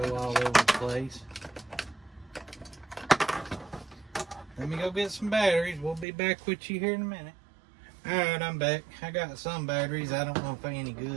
all over the place. Let me go get some batteries. We'll be back with you here in a minute. Alright, I'm back. I got some batteries. I don't know if they're any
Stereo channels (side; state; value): left; drops out; at 6.1 s